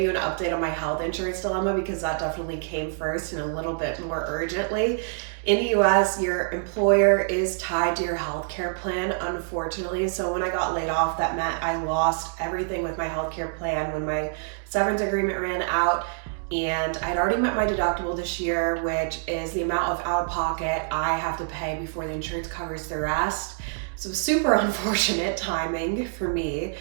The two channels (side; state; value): left; silent; digital silence